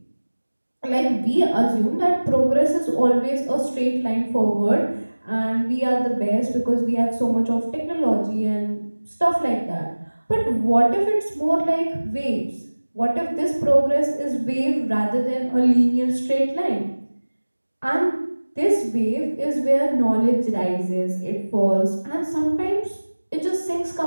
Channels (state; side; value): inverted; both; correlation -1.00